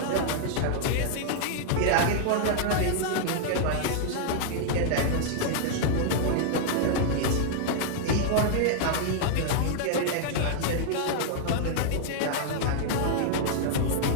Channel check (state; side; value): different; both; correlation -0.01